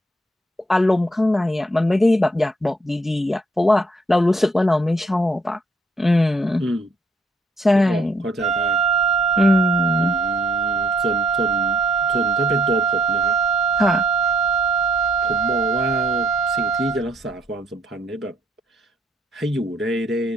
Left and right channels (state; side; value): normal; both; correlation 0.67